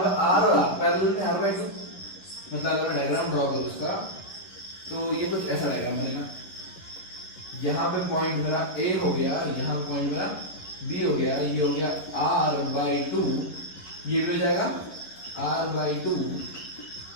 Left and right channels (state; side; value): late; right; 11 ms